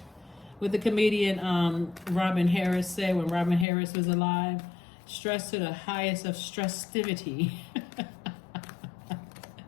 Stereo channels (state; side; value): drops out; right; at 3.7 s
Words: What the comedian Robin Harris said when Robin Harris was alive, stress to the highest of stressivity.